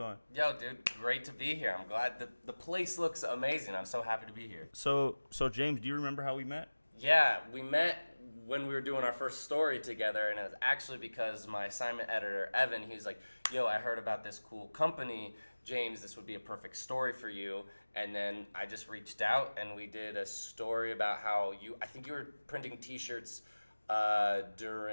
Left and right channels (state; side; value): inverted; both; correlation -1.00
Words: Yo, dude, great to be here. I'm glad the place looks amazing. I'm so happy to be here. So James, do you remember how we met? Yeah, we met when we were doing our first story together, and it was actually because my assignment editor, Evan, he was like, yo, I heard about this cool company. James, this would be a perfect story for you. And then I just reached out, and we did a story about how I think you were printing T-shirts